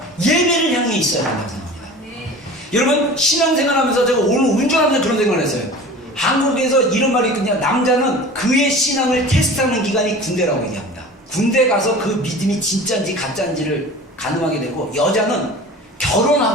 예배를 향해 있어야 된다고 생각합니다. 여러분, 신앙생활 하면서 제가 오늘 운전하면서 그런 생각을 했어요. 한국에서 이런 말이 있거든요. 남자는 그의 신앙을 테스트하는 기간이 군대라고 얘기합니다. 군대 가서 그 믿음이 진짜인지 가짜인지를 가늠하게 되고, 여자는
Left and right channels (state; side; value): normal; both; correlation 0.39